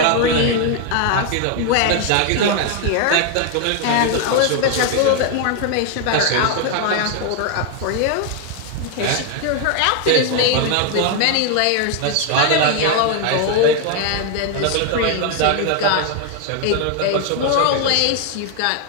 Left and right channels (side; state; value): both; different; correlation 0.01